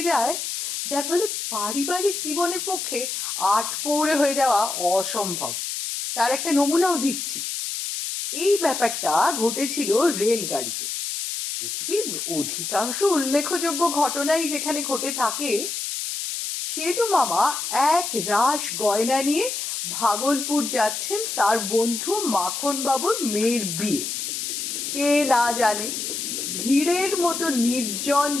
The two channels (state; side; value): noise; left; hiss, 4 dB below the sound